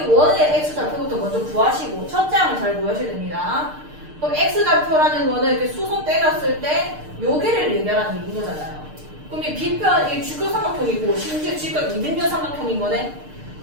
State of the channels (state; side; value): late; left; 6.6 ms